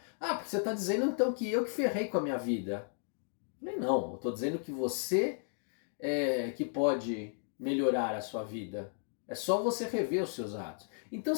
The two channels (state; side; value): silent; right; digital silence